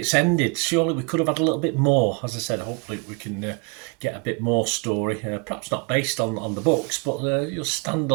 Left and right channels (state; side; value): quieter; left; 30.9 dB